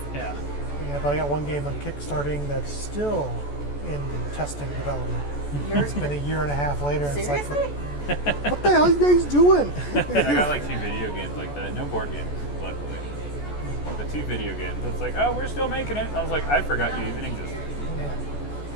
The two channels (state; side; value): late; right; 14 ms